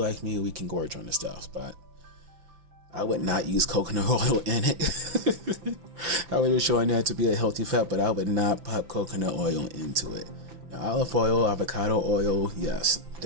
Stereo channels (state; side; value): late; left; 6.0 ms